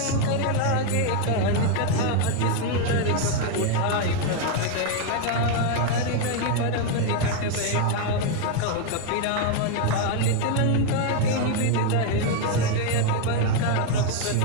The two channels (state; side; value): different; both; correlation 0.01